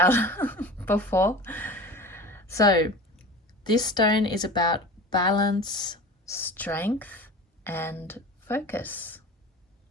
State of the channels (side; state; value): both; normal; correlation 0.35